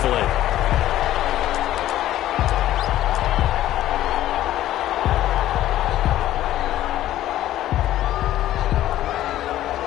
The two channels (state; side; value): quieter; right; 13.5 dB